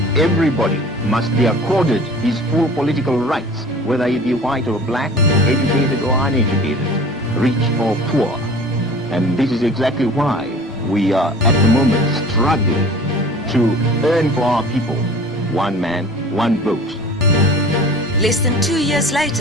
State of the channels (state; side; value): normal; both; correlation 0.43